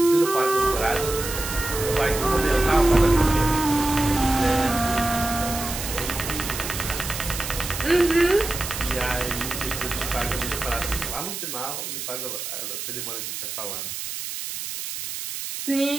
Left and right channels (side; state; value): right; noise; hiss, 6 dB below the sound